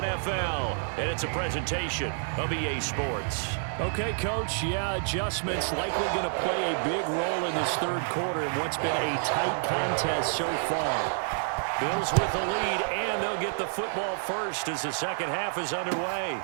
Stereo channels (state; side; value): silent; left; 58 dB below the other